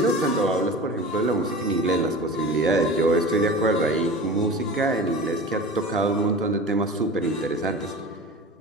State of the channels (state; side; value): normal; both; correlation 0.34